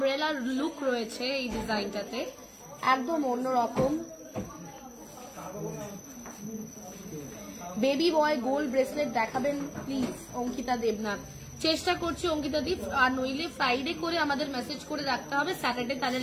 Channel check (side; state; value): both; identical; correlation 1.00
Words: লুক রয়েছে এই ডিজাইনটাতে, একদম অন্যরকম। বেবি বয় গোল্ড ব্রেসলেট দেখাবেন প্লিজ অঙ্কিতা দেবনাথ। চেষ্টা করছি অঙ্কিতা দি, আর নইলে ফ্রাইডে করে আমাদের মেসেজ করে রাখতে হবে, স্যাটারডে তাদের